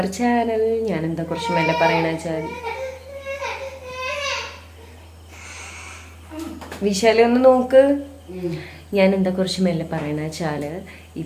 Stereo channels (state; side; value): identical; both; correlation 1.00